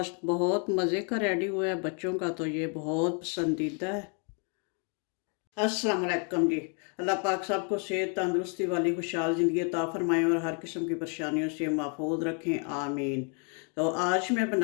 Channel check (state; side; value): quieter; right; 39.3 dB